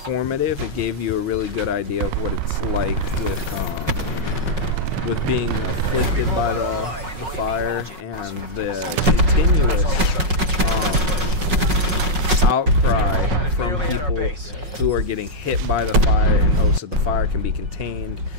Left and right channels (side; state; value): left; late; 5.4 ms